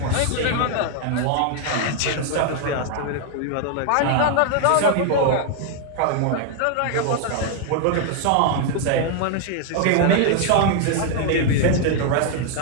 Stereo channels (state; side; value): different; both; correlation 0.00